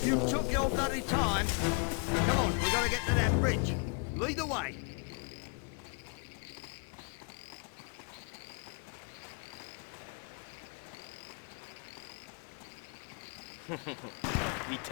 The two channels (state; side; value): quieter; right; 37.1 dB